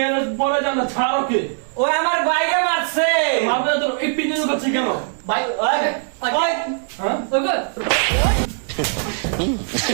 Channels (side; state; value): left; silent; 66 dB below the other